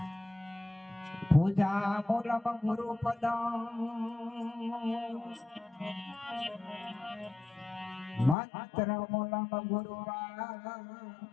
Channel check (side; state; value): right; drops out; at 8.3 s